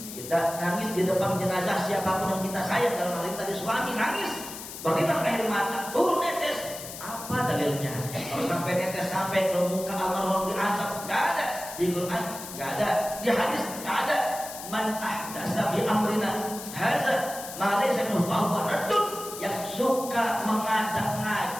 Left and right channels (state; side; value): noise; left; hiss, 11 dB below the sound